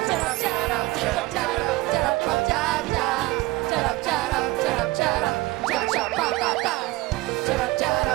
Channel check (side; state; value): left; quieter; 20.6 dB